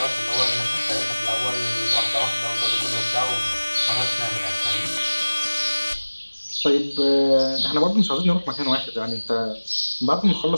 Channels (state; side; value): inverted; both; correlation -1.00